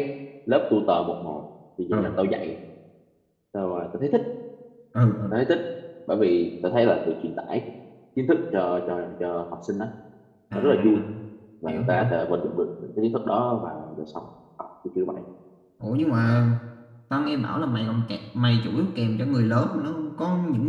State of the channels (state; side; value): identical; both; correlation 1.00